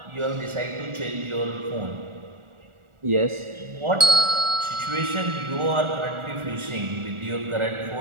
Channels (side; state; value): left; late; 1.4 ms